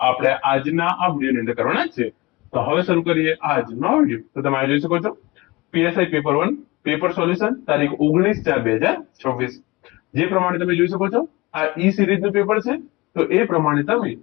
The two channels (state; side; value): quieter; right; 22.5 dB